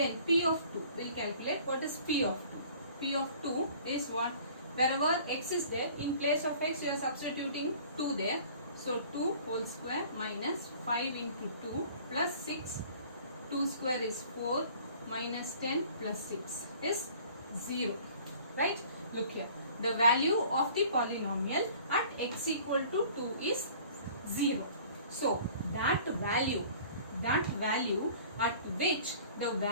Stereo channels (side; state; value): both; inverted; correlation -0.50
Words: p of 2, we will calculate what is p of 2. P of 2 is what? Wherever x is there, in place of x, you are substituting 2 there. So, 2 whole square minus 5 into 2 plus 6. 2 square is 4 minus 10 plus 6 is 0. Right? Look here. The value of the polynomial at x equal to 2 is 0. So, that value at which the